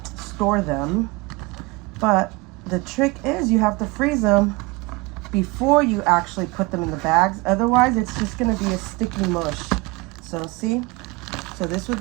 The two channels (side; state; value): left; quieter; 24.1 dB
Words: store them. But the trick is you have to freeze them before you actually put them in the bags. Otherwise, it's just gonna be a sticky mush. So see, so this would